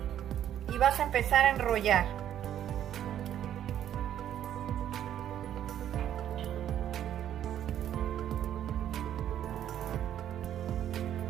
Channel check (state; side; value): quieter; left; 10.7 dB